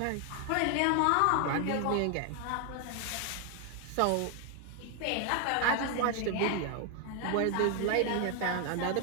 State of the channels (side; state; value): both; different; correlation 0.00